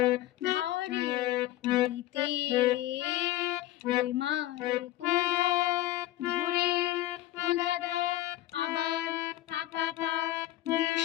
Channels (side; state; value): right; quieter; 15.3 dB